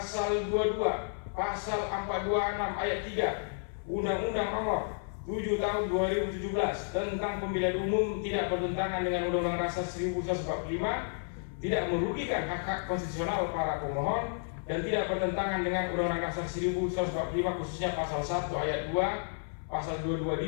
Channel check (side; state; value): right; silent; 57 dB below the other